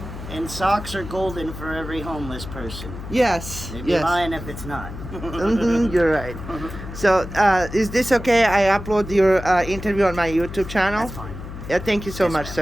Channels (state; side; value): noise; left; hum, 10 dB below the sound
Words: And socks are golden for every homeless person. Yes. They'd be Yes. lying if it's not. You're right. So, is this okay? I upload your interview on my YouTube channel? That's fine. Yeah, thank you so Yes, much, ma'am.